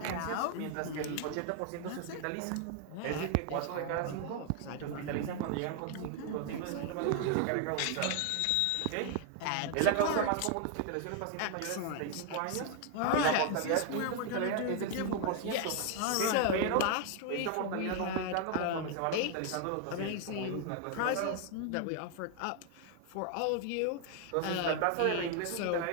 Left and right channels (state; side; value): different; both; correlation 0.00